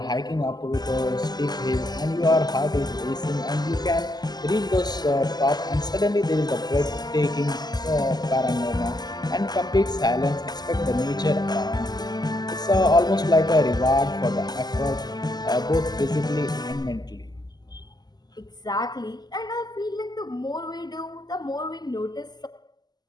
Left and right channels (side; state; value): right; late; 0.20 ms